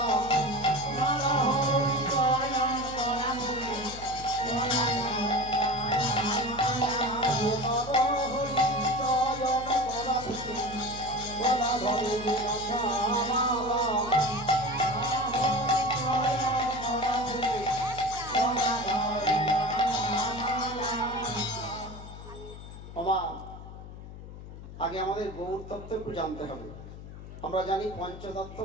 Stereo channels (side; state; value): left; noise; hum, 13 dB below the sound